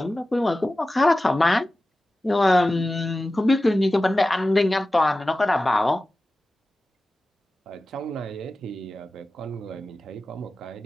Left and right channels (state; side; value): normal; both; correlation 0.95